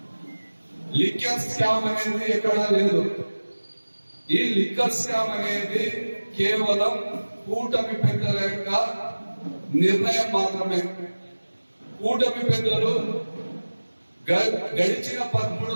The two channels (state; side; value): inverted; both; correlation -1.00